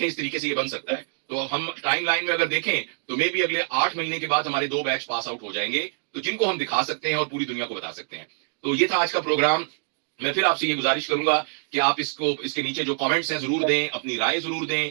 اس طریقے سے یہ بن سکتا ہے. تو ہم ٹائم لائن میں اگر دیکھیں تو مے بھی اگلے 8 مہینے کے بعد ہمارے 2 بیچ پاس آؤٹ ہو جائیں گے, تو جن کو ہم دکھا سکتے ہیں اور پوری دنیا کو بتا سکتے ہیں. تو یہ تھا آج کا پروگرام. میں پھر آپ سے یہ گزارش کروں گا کہ آپ اس کے نیچے جو کامنٹس ہیں ضرور دیں, اپنی رائے ضرور دیں,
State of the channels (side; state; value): left; silent; digital silence